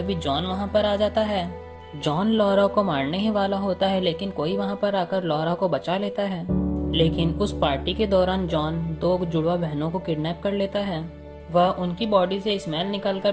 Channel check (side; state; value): both; identical; correlation 1.00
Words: जॉन वहां पर आ जाता है। जॉन लॉरा को मारने ही वाला होता है, लेकिन कोई वहां पर आकर लॉरा को बचा लेता है। लेकिन उस पार्टी के दौरान जॉन 2 जुड़वा बहनों को किडनैप कर लेता है। वह उनकी बॉडी से स्मेल निकालकर